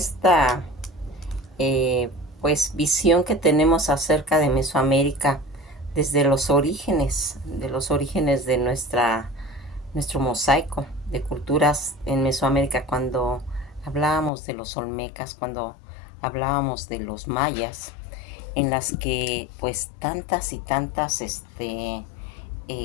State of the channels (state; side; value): drops out; right; at 14.3 s